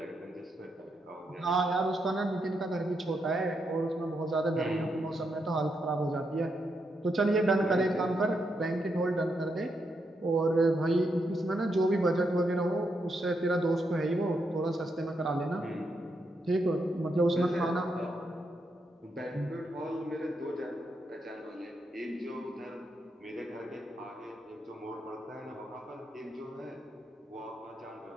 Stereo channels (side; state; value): both; normal; correlation 0.81